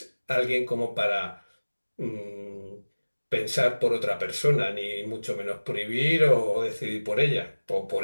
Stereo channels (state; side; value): inverted; both; correlation -1.00